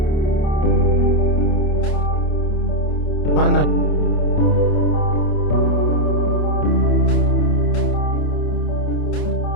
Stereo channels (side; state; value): right; late; 28 ms